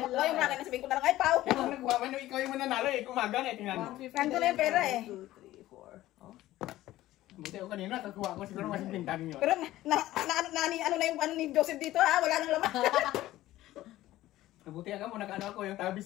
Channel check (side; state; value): right; quieter; 15.5 dB